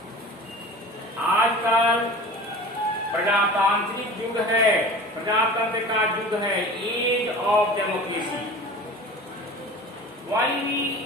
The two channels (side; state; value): both; normal; correlation 0.37